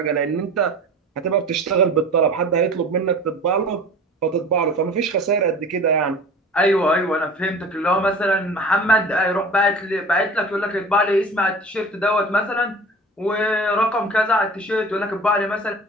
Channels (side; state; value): both; normal; correlation 0.40